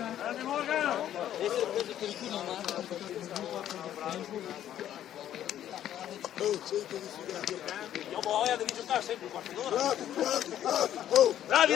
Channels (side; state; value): right; quieter; 11.3 dB